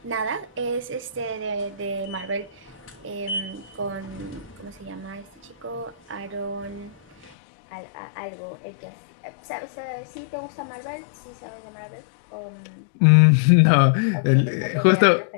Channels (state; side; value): drops out; right; at 7.3 s